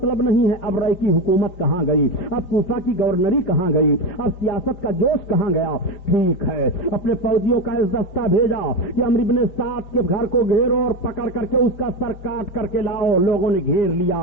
نہیں ہے، اب رائے کی حکومت کہاں گئی، اب کوفہ کی گورنری کہاں گئی، اب سیاست کا جوش کہاں گیا؟ ٹھیک ہے، اپنے فوجیوں کا اس دستہ بھیجا کہ عمرو بن سعد کے گھر کو گھیرو اور پکڑ کر کے اس کا سر کاٹ کر کے لاؤ۔ لوگوں نے گھیر لیا،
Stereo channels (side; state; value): right; late; 4.4 ms